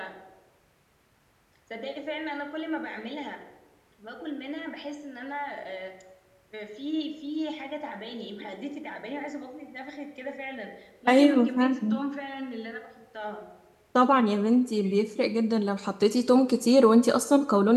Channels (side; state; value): both; identical; correlation 1.00